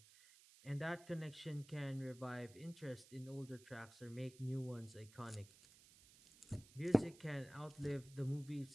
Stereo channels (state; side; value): noise; right; hiss, 22 dB below the sound